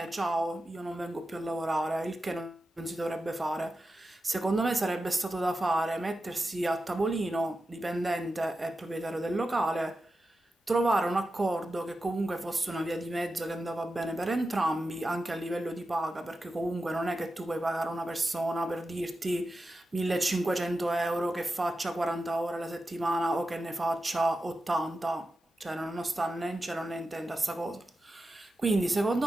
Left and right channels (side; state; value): both; normal; correlation 0.91